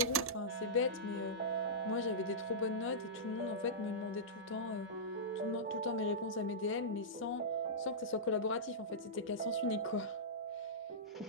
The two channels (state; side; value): normal; both; correlation -0.15